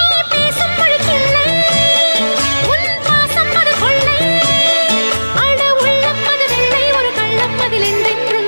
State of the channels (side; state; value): both; inverted; correlation -1.00